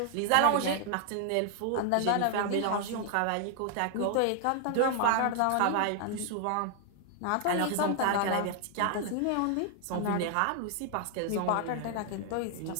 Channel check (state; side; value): different; both; correlation 0.00